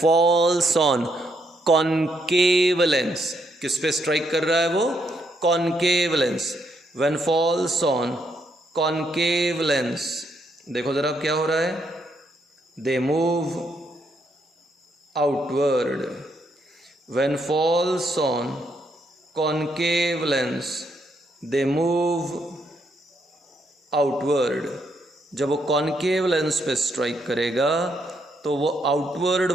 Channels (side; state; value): both; normal; correlation 0.75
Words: on concave lens. किस पे स्ट्राइक कर रहा है वो? Concave lens. When falls on concave lens, देखो जरा क्या हो रहा है? They move outward. When falls on concave lens they move outward. जब वो कॉनकेव लेंस पे स्ट्राइक करेगा तो वो आउटवर्ड